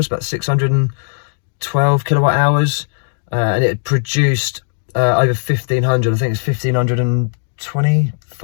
about 612 kilowatt hours. And it produced over 1,500, I think it's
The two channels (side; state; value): right; silent; digital silence